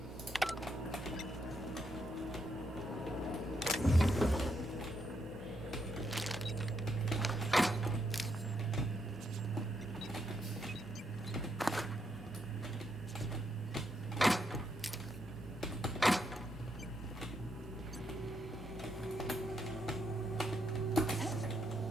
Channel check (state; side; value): normal; both; correlation 0.78